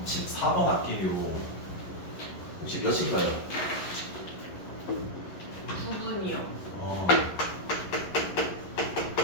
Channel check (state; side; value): late; right; 11 ms